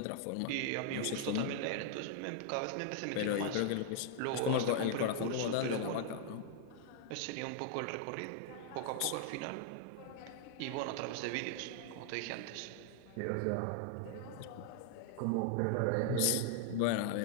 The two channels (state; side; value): different; both; correlation 0.00